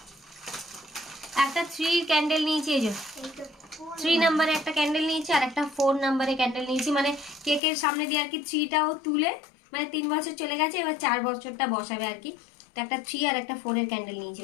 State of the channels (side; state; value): right; drops out; at 7.6 s